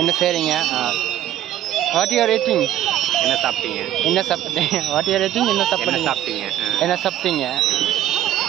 என்ன செய்கிறீங்க? What you are eating? என்ன சாப்பிட்டீங்க? என்ன சாப்பிட்டீங்க? What you are eating? என்ன என்ன சாப்பிட்டீங்க? சாப்பிட்டீங்க? என்ன சாப்பிட்டீங்க?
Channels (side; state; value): left; quieter; 12.2 dB